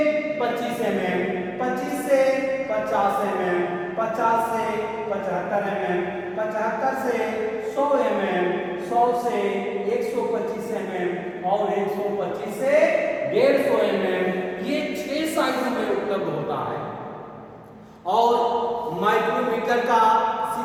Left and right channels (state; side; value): identical; both; correlation 1.00